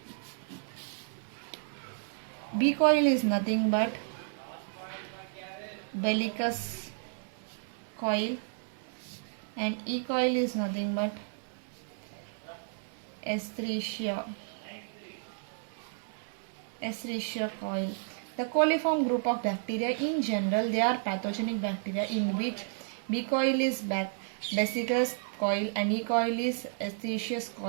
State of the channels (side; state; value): left; silent; 56 dB below the other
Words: B. coli is nothing but Bellicus coil, and E. coli is nothing but Escherichia coil. The coliform group of bacteria in general, they are pathogenic bacteria in which B. coli is Bacillus coil and E. coli is Escherichia